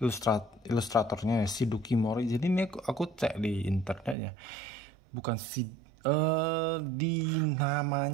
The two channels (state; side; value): drops out; left; at 4.2 s